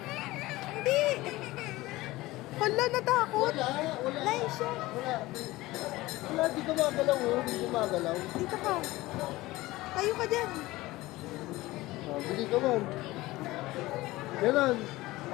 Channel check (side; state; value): right; quieter; 18.9 dB